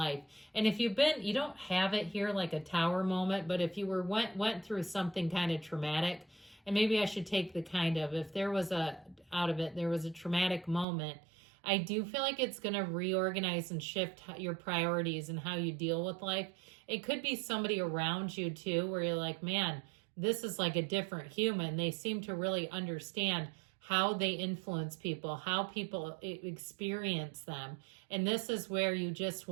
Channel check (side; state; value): left; drops out; at 10.9 s